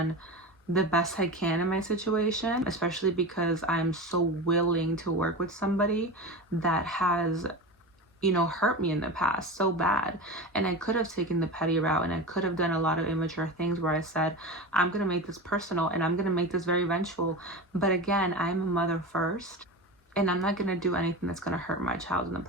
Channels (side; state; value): both; normal; correlation 0.27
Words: the best I can in my situation, especially because I'm so willing to work with somebody that has hurt me in the past so bad. And I could have taken the petty route, and I could have done a lot of immature things where I said, I'm going to make this personal and I'm going to make this very vengeful. But again, I'm a mother first, and I'm not going to do anything that's going to hurt my child in the